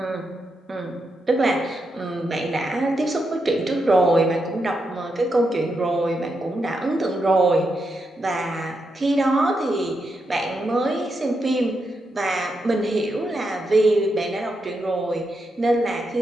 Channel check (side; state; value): both; normal; correlation 0.84